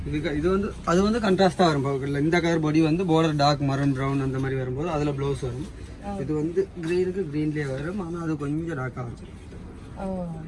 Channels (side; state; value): both; identical; correlation 1.00